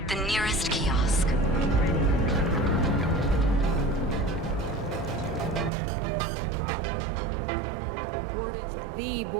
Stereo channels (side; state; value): left; drops out; at 5.7 s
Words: The nearest kiosk. Word is the